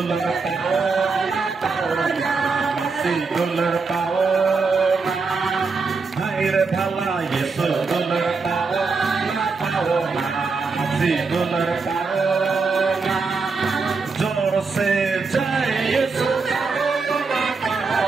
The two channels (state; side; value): quieter; left; 4.5 dB